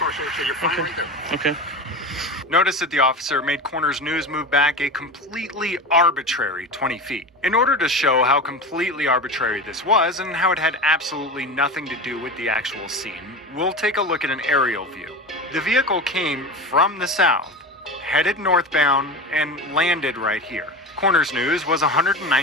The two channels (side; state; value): both; normal; correlation 0.26